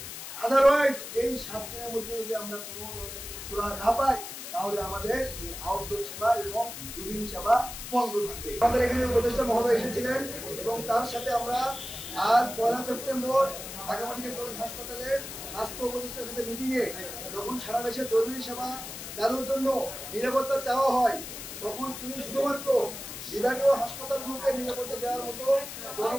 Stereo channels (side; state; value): left; noise; hiss, 9 dB below the sound